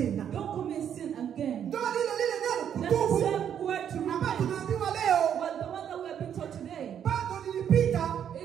Don't commit sin again. Ndio lile neno kutubu. That's the same word to repent. Tunaambiwa leo. Well, the one that we have been taught today. Bado nilipita.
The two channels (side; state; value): left; quieter; 9.0 dB